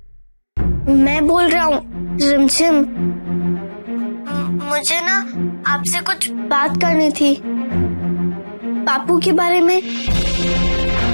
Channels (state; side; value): inverted; both; correlation -1.00